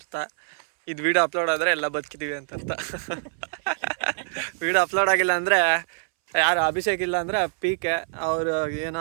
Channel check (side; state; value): left; silent; 62 dB below the other